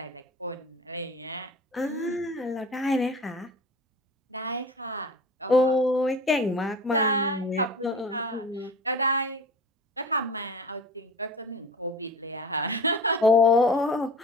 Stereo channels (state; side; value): normal; both; correlation 0.37